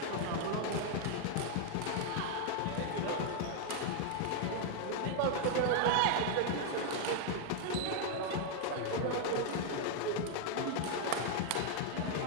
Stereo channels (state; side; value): different; both; correlation 0.00